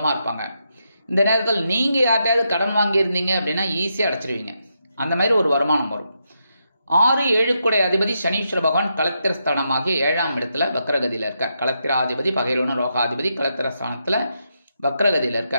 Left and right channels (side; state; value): both; inverted; correlation -0.83